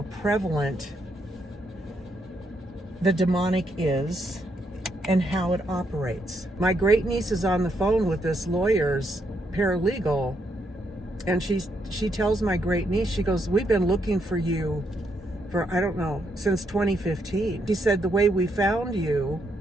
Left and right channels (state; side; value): normal; both; correlation 0.77